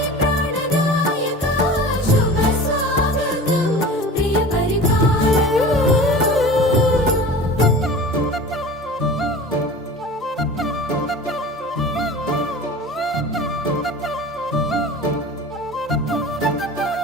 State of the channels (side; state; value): both; normal; correlation 0.37